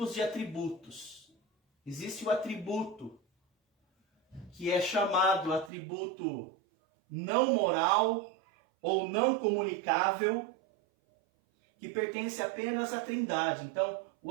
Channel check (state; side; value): drops out; left; at 5.7 s